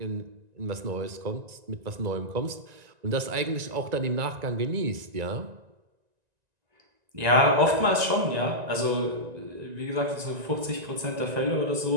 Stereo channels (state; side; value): late; left; 1.9 ms